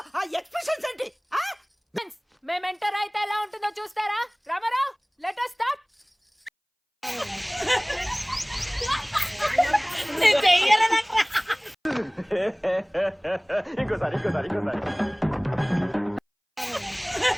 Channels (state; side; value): identical; both; correlation 1.00